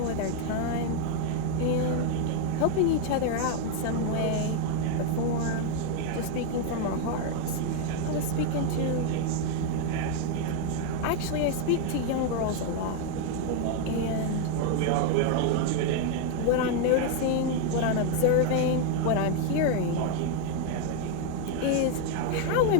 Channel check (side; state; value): both; different; correlation 0.01